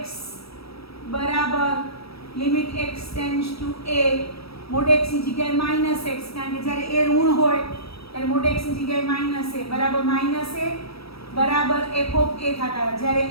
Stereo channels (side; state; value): right; late; 0.77 ms